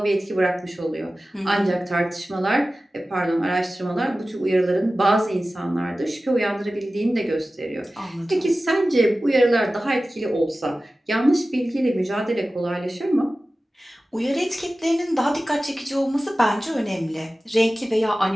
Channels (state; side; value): normal; both; correlation 0.96